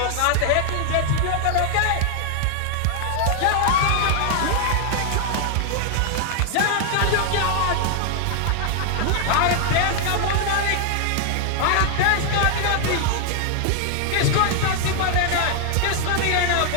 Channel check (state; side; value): different; both; correlation 0.00